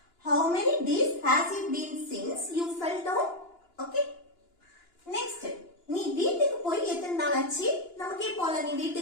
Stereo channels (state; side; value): late; right; 2.9 ms